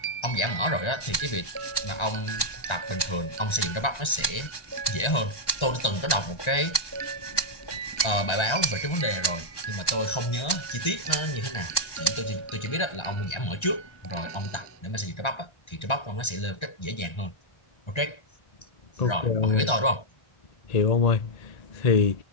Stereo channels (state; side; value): late; right; 1.3 ms